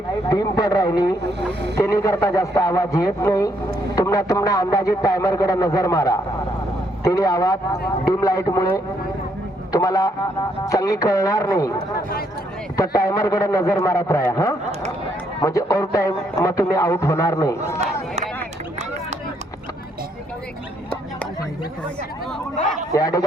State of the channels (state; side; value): normal; both; correlation 0.72